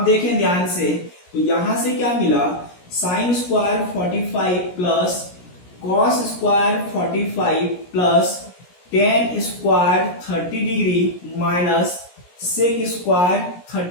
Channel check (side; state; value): right; late; 17 ms